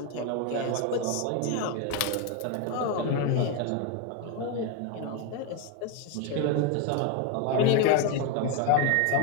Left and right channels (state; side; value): different; both; correlation 0.02